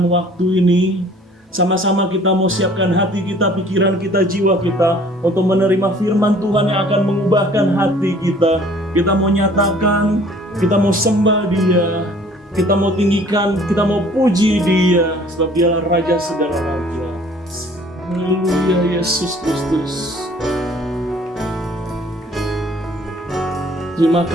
waktu ini. Sama-sama kita mau siapkan hati kita, pikiran kita, jiwa kita untuk menerima firman Tuhan yang akan mengubahkan hati kita. Kita mau nyatakan, kita mau sembah Dia, kita mau tinggikan, kita mau puji Dia, sebab Dialah Raja segala raja. Haleluya Yesus Kristus. Terima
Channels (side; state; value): both; normal; correlation 0.54